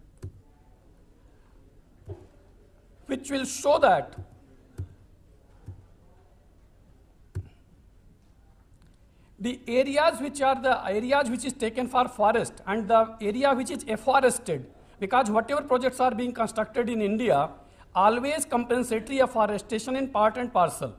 which will show that the areas which are the areas which is taken for forest and the area which is afforested, because whatever projects are being constructed in India, always compensatory afforestation in part and parcel.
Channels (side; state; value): both; identical; correlation 1.00